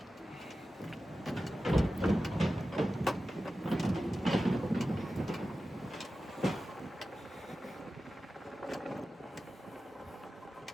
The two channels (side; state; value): both; normal; correlation 0.94